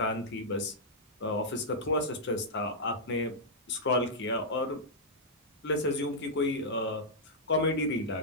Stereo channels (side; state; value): both; normal; correlation -0.09